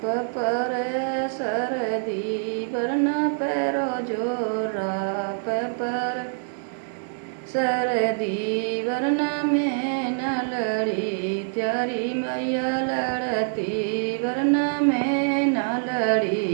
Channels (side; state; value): left; silent; 62 dB below the other